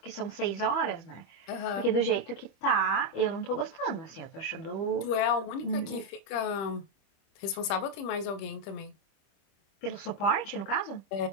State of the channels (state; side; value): late; right; 25 ms